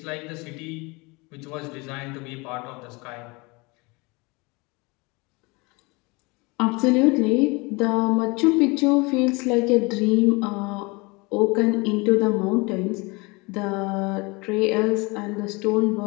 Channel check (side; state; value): right; quieter; 26.5 dB